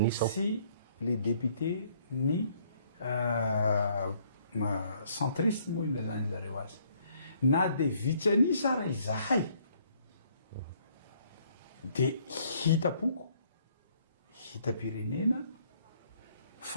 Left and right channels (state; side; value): inverted; both; correlation -0.65